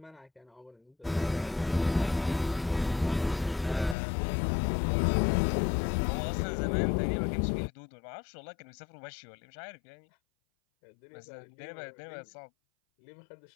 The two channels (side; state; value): right; drops out; at 4.0 s